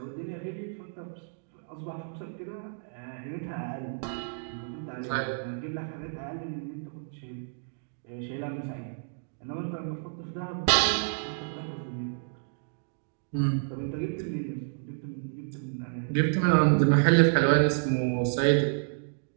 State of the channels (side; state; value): left; silent; digital silence